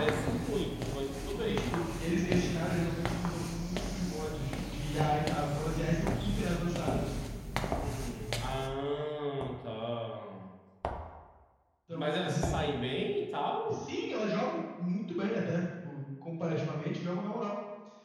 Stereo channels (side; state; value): both; identical; correlation 1.00